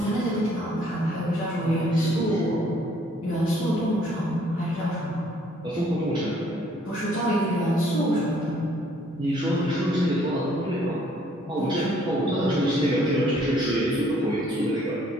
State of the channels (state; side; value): normal; both; correlation 0.63